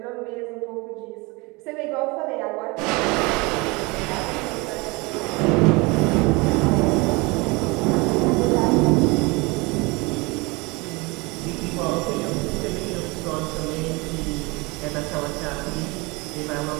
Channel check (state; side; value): quieter; left; 25.7 dB